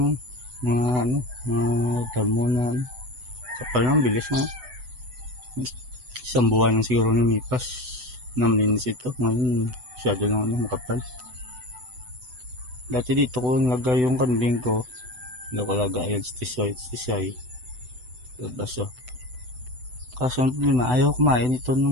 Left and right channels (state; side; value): late; left; 8.0 ms